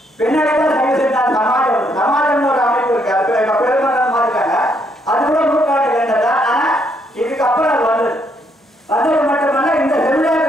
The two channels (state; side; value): normal; both; correlation 0.73